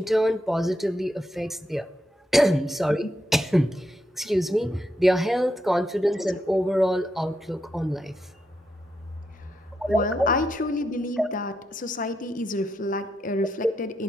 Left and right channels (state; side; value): normal; both; correlation 0.83